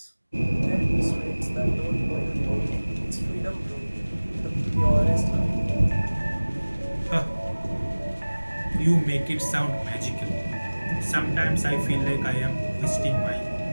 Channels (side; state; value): both; inverted; correlation -1.00